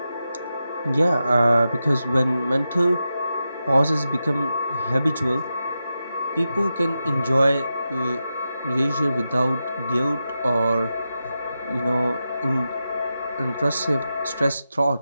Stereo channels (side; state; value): both; inverted; correlation -0.90